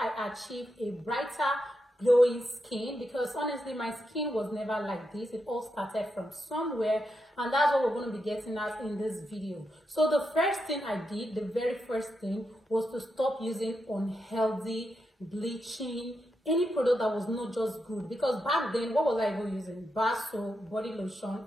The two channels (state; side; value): normal; both; correlation 0.85